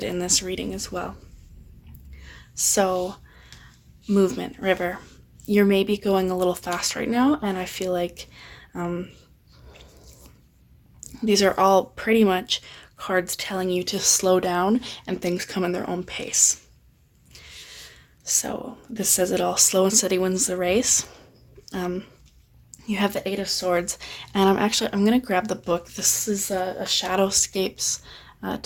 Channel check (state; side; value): identical; both; correlation 1.00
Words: in this reading as well. So, movement, river. You're maybe going a little fast right now, and I feel like these are all pretty much cards telling you to slow down and things come in their own pace. So this says it all. Slow and steady wins the race. You have the Eight of Swords, and I'm going to grab the book. This is a Shadowscapes